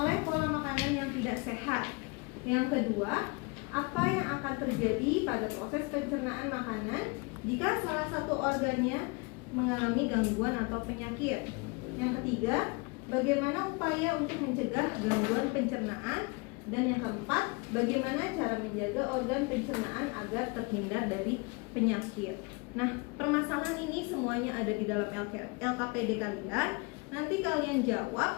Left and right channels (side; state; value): right; quieter; 28.9 dB